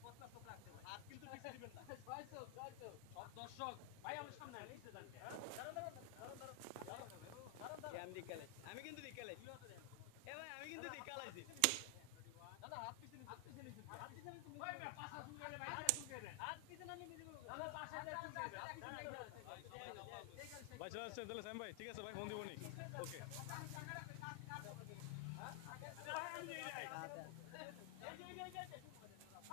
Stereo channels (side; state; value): both; different; correlation 0.00